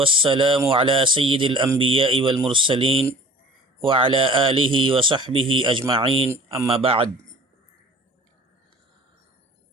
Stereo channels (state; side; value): normal; both; correlation 0.45